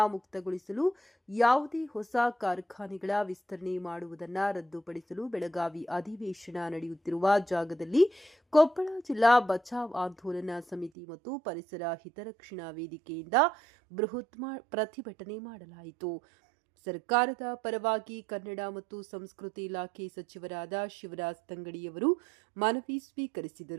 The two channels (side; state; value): left; drops out; at 10.9 s